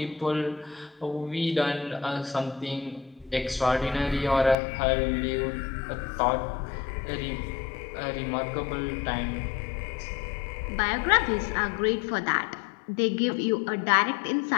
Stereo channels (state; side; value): drops out; right; at 4.5 s